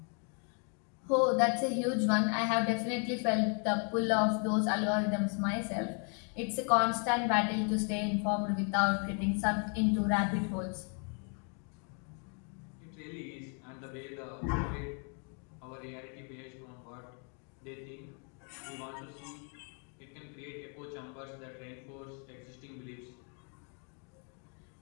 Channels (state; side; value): quieter; right; 38.4 dB